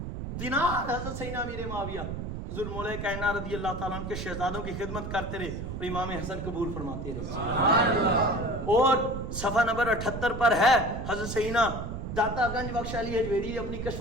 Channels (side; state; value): right; noise; rumble, 6 dB below the sound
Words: دینار حضرت سیدنا امیر معاویہ حضور مولا کائنات رضی اللہ تعالیٰ عنہ کے شہزادوں کی خدمت کرتے رہے اور امام حسن قبول فرماتے رہے۔ اور صفحہ نمبر 78 پر ہے، حضرت سیدنا داتا گنج بخش علی حجویری اپنی کشف